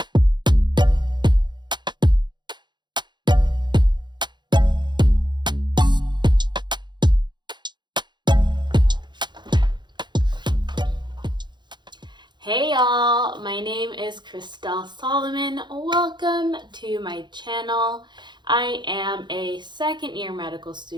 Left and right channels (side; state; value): left; late; 0.22 ms